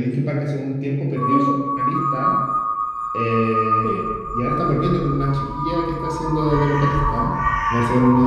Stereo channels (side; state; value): both; identical; correlation 1.00